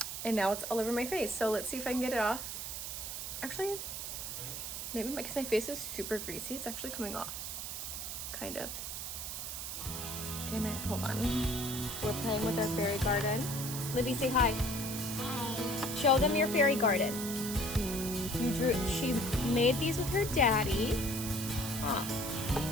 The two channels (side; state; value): right; noise; hiss, 5 dB below the sound